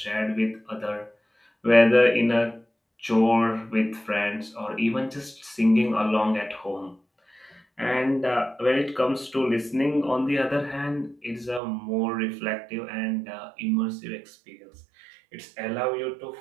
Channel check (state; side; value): drops out; left; at 11.6 s